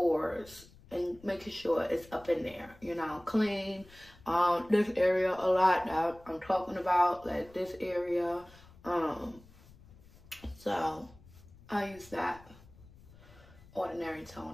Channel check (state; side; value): noise; left; rumble, 23 dB below the sound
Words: and making sure it's up in there, you know, clean this area a lot that I'm talking about, like this area. So I use that ordinary